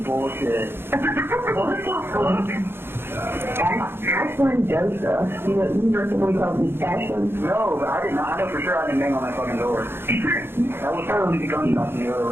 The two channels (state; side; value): late; left; 0.11 ms